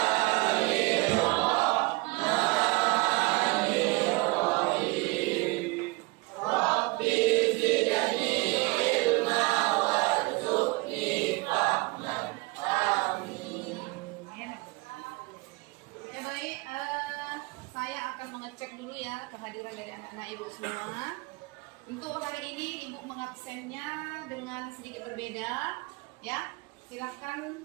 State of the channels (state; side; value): quieter; left; 25.0 dB